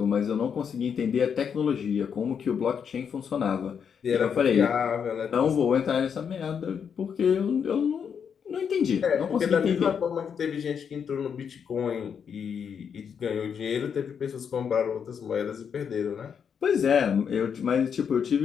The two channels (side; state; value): right; quieter; 7.2 dB